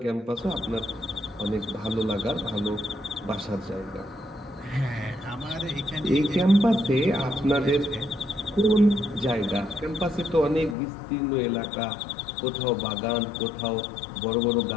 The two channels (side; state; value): right; drops out; at 10.8 s